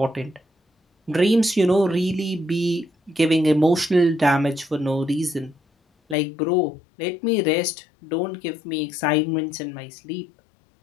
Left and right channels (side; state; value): right; drops out; at 6.2 s